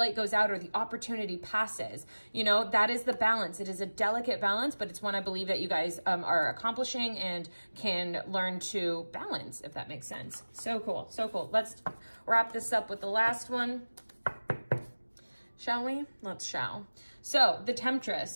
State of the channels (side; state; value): both; inverted; correlation -1.00